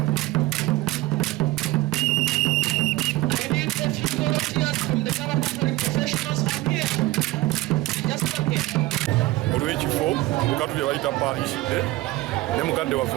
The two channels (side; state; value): left; quieter; 18.4 dB